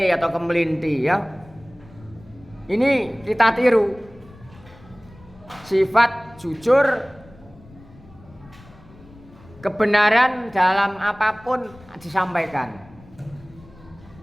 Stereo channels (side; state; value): left; noise; rumble, 23 dB below the sound